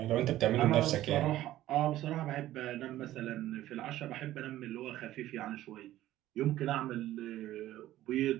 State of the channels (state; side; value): quieter; left; 14.4 dB